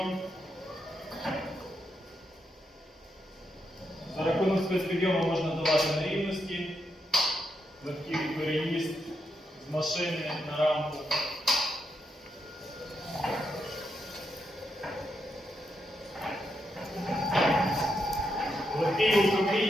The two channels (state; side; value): normal; both; correlation 0.82